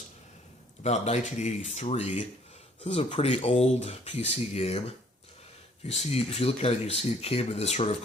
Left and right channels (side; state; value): both; normal; correlation 0.60